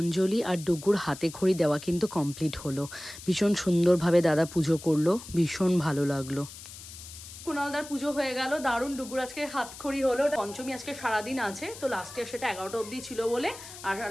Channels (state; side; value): noise; left; hiss, 14 dB below the sound